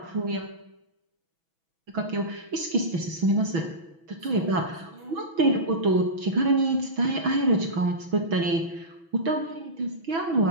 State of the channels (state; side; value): late; left; 6.1 ms